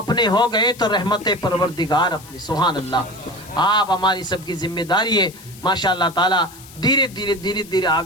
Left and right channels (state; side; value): noise; left; hiss, 20 dB below the sound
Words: ہو گئے تو رحمت پروردگار اپنی. سبحان اللہ. آپ ہماری سب کی ذمہ داری ہے ماشاءاللہ تعالی دھیرے دھیرے